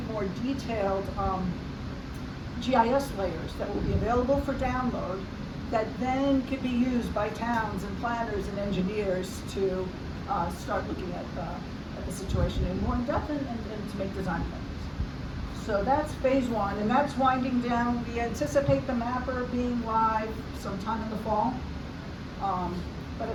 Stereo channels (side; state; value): both; identical; correlation 1.00